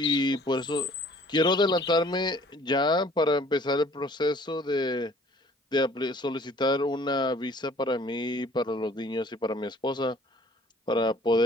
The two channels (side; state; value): both; normal; correlation 0.54